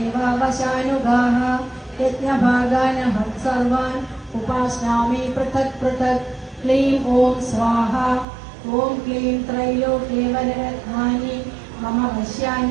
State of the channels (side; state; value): left; drops out; at 8.2 s